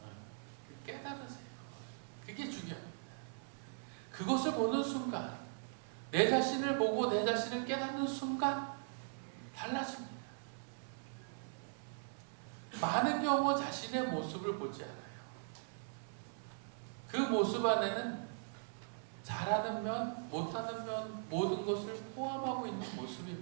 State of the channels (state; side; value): silent; left; 51 dB below the other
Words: 깨달으세요. 그게 중요합니다. 그것을 보는 순간, 내 자신을 보고 내 자신을 깨닫는 순간 달라집니다. 많은 경우 자신의 모습을 보지 않아요. 그 모습 안에는 잘하는 면, 못하는 면, 모든 것을 포함하고 있는